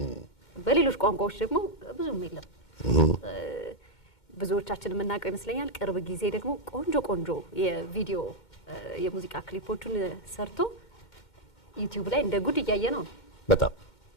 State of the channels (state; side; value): late; right; 2.1 ms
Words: በሌሎች ቋንቋዎች ደግሞ ብዙም የለም። ብዙዎቻችን የምናውቀው ይመስለኛል። ቅርብ ጊዜ ደግሞ ቆንጆ የቪዲዮ የሙዚቃ ክሊፖቹን ሰርቶ ዩቲዩብ ላይ እንደ ጉድ እያየ ነው። በጣም